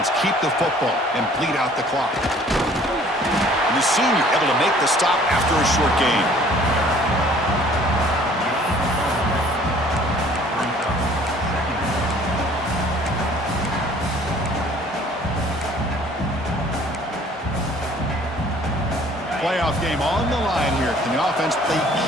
keep the football and bleed out the clock? And the senior able to make the stop after a short gain. Playoff game on the line here. Can the offense play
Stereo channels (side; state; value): both; normal; correlation 0.54